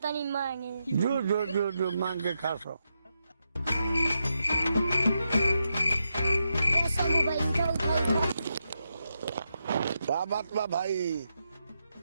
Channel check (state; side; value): inverted; both; correlation -0.85